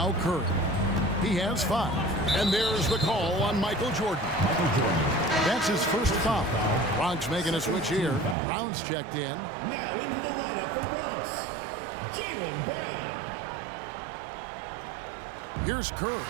Curry. He has 5. And there's the call on Michael Jordan. That's his first foul. Bronx making a switch here. Brown's checked in. Now into the lineup for Bronx, Jaylen Brown. Here's Curry.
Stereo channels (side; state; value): left; drops out; at 8.3 s